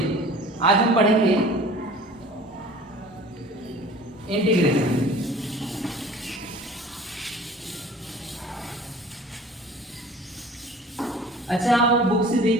आज हम पढ़ेंगे इंटीग्रेशन। अच्छा, आप बुक से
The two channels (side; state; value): both; normal; correlation 0.45